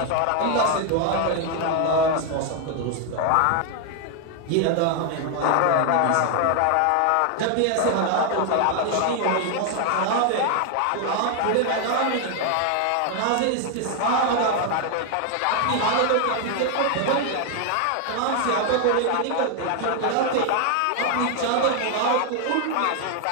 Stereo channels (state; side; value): different; both; correlation 0.00